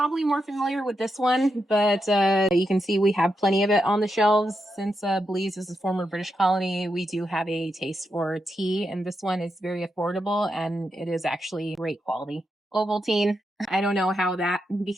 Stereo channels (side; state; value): both; normal; correlation 0.85